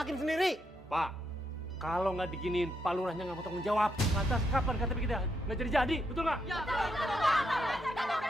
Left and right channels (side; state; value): both; normal; correlation 0.79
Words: sendiri. Pak, kalau nggak diginiin, Pak Lurahnya nggak mau tanggung jawab. Lantas kapan KTP kita nggak jadi-jadi, betul nggak?